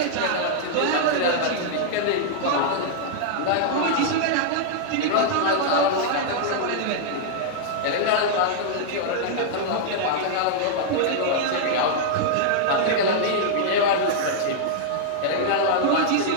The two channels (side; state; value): both; different; correlation -0.01